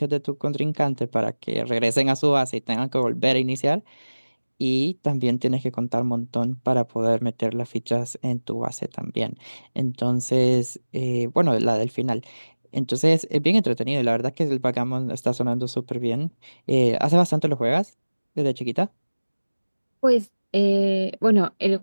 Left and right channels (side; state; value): both; inverted; correlation -1.00